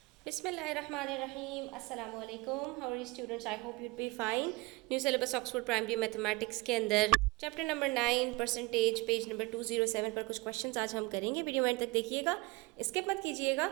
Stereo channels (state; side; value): quieter; left; 24.7 dB